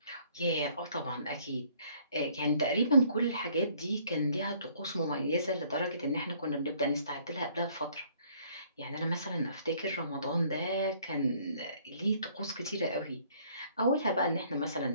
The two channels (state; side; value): inverted; both; correlation -0.61